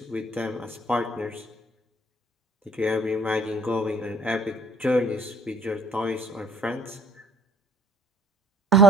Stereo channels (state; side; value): normal; both; correlation 0.57